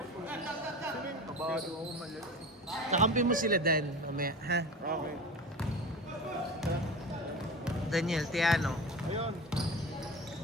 Kabado ako malas. Kakampi mo sila, Dan. Mamaya, ha? Okay. Daniel, Tiano. Ayun.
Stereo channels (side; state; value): both; normal; correlation 0.31